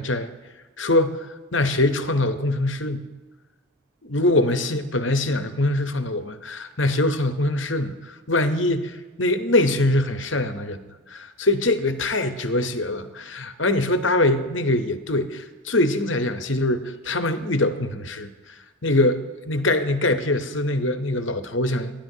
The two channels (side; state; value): both; normal; correlation 0.21